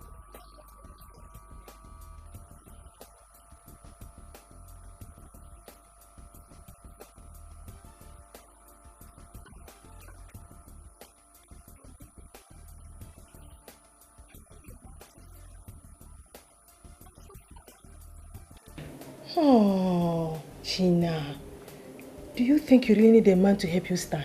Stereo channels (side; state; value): both; identical; correlation 1.00